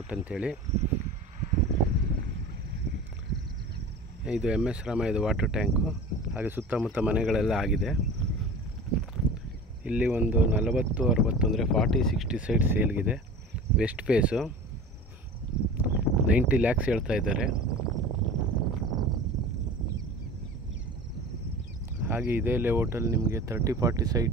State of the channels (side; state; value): both; normal; correlation 0.37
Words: ಅಂತೇಳಿ. ಇದು MS ರಾಮಯ್ಯದ ವಾಟರ್ ಟ್ಯಾಂಕು. ಹಾಗೆ ಸುತ್ತಮುತ್ತ ಮನೆಗಳೆಲ್ಲ ಆಗಿದೆ. ಇಲ್ಲಿ ಒಂದು 40-60 ಅಂದರೆ 40-60 ಸೈಟ್ ಸೇಲ್ಗಿದೆ. ವೆಸ್ಟ್ ಫೇಸು 90 lakhs ಹೇಳ್ತಾ ಇದ್ದಾರೆ. ಹಾಗೆ ಇದೇ ಲೇಔಟಲ್ಲಿ ನಿಮಗೆ 30-40